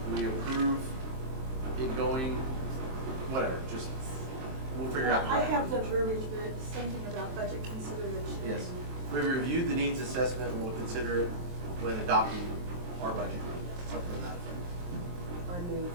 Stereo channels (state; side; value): late; left; 23 ms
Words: we approve it going, whatever, just, we'll figure out. the I right- have the verbiage, but it's something about budget consideration. Yes, we reviewed the needs assessment and we'll consider it when adopting our budget, something like that. I move